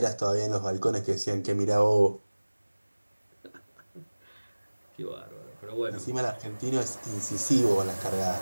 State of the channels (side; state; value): both; inverted; correlation -1.00